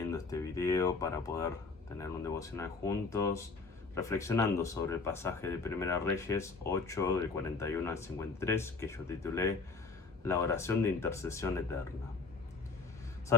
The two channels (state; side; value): quieter; right; 4.2 dB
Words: este video para poder tener un devocional juntos, reflexionando sobre el pasaje de Primera Reyes 8, del 41 al 53, que yo titulé La oración de intercesión eterna.